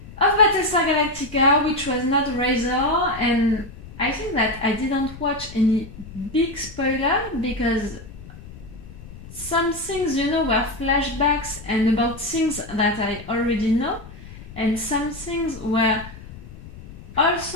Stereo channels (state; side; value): noise; left; rumble, 16 dB below the sound